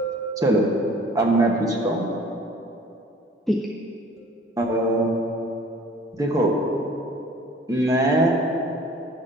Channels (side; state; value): both; normal; correlation 0.50